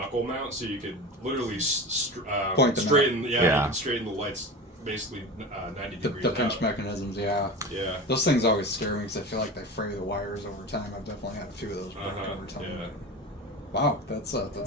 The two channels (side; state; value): both; normal; correlation 0.29